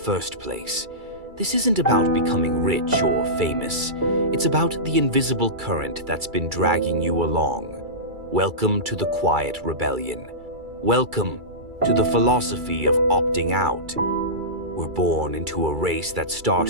place. This isn't about becoming rich or famous. It's about the invisible current that's been dragging you along. Welcome to the quiet rebellion. Welcome to the philosophy of opting out. We're born into a race that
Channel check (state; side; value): late; left; 2.3 ms